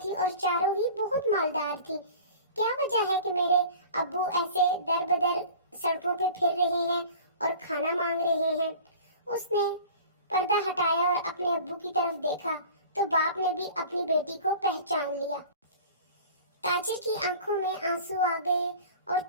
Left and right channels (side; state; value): both; inverted; correlation -0.42